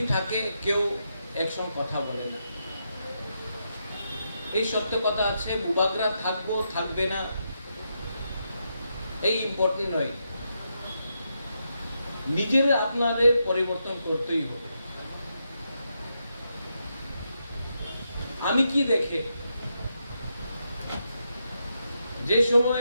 থাকে কেউ একসঙ্গে কথা বলে না। এই সত্য কথা আছে, বুবাগরা থাকবো থাকবে না এই ইম্পর্টেন্ট নয়। নিজের আপনাদের পরিবর্তন করতেই হবে। আমি কি দেখে যে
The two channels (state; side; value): inverted; both; correlation -0.83